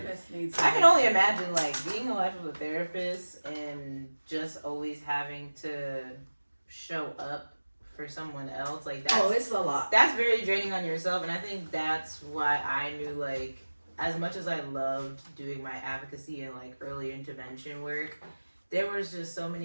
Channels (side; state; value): both; inverted; correlation -1.00